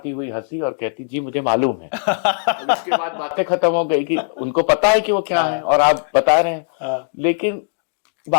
हुई हंसी, और कहती जी मुझे मालूम है। और इसके बाद बातें खत्म हो गई कि उनको पता है कि वो क्या है और आप बता रहे हैं, लेकिन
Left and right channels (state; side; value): silent; right; digital silence